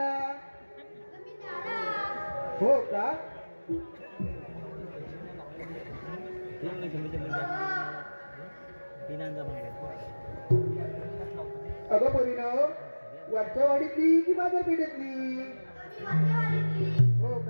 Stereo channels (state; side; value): inverted; both; correlation -1.00